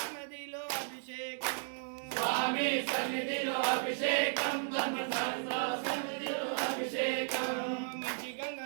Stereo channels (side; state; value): left; silent; digital silence